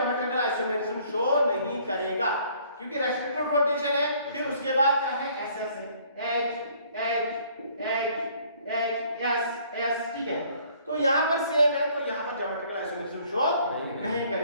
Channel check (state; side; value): inverted; both; correlation -0.60